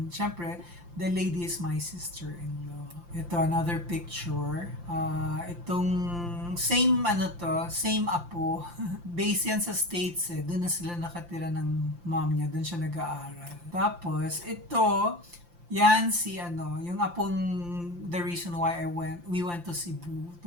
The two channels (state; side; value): late; left; 5.8 ms